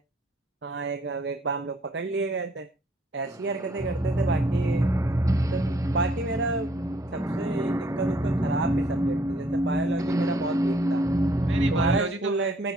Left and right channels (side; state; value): both; normal; correlation 0.64